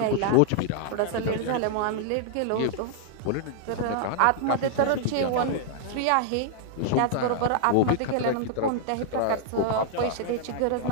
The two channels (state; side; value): different; both; correlation -0.01